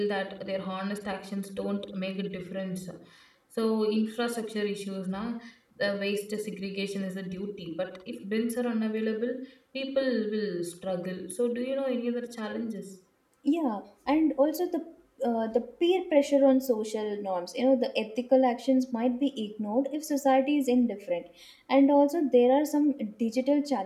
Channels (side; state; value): both; identical; correlation 1.00